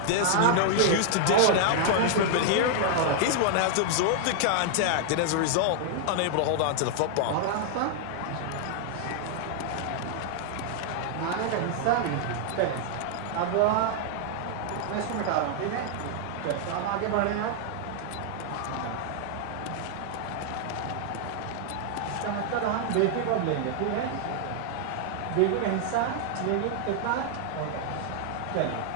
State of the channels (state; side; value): different; both; correlation -0.01